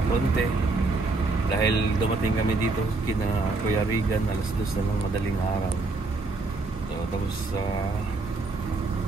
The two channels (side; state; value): left; quieter; 3.5 dB